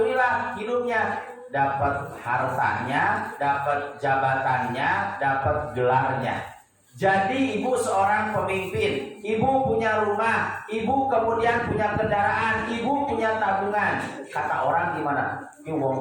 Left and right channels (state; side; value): identical; both; correlation 1.00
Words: hidupnya dapat hartanya, dapat jabatannya, dapat gelarnya. Jadi ibu seorang pemimpin, ibu punya rumah, ibu kemudian punya kendaraan, ibu punya tabungan. Kata orang gimana? Ini